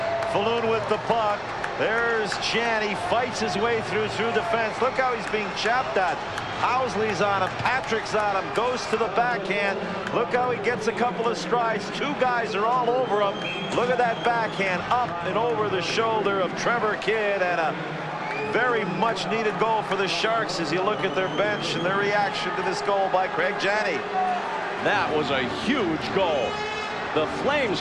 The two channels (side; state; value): both; identical; correlation 1.00